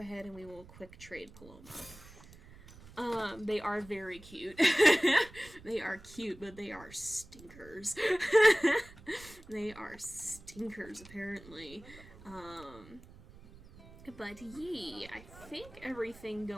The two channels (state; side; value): noise; right; rumble, 20 dB below the sound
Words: and we will quick trade Paloma. They are very cute. They are cute, but they are stinkers. They are stinkers, apparently. But yee, I think everything